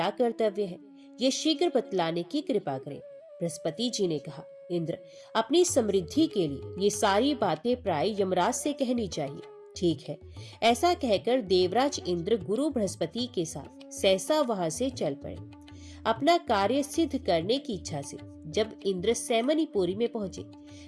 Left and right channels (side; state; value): both; identical; correlation 1.00